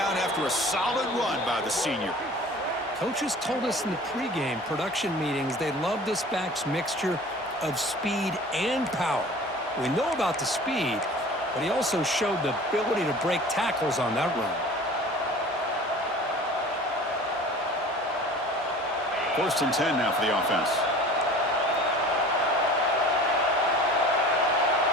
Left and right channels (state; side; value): normal; both; correlation 0.43